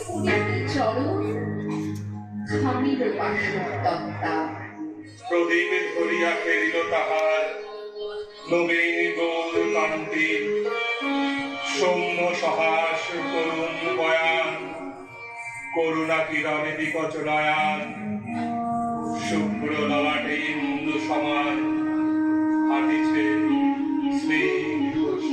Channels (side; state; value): both; identical; correlation 1.00